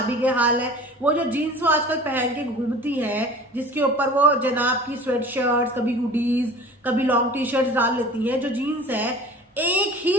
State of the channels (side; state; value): both; normal; correlation 0.40